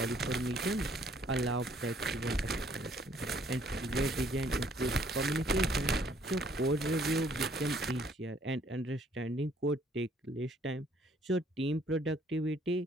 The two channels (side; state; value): both; normal; correlation 0.63